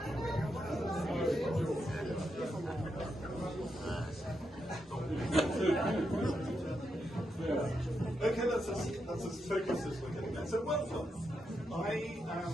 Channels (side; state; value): both; normal; correlation 0.84